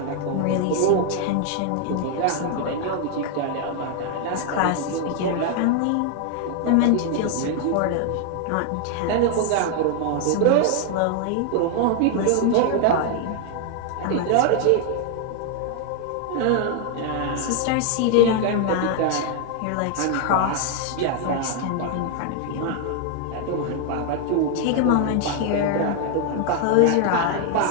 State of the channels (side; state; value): both; different; correlation 0.00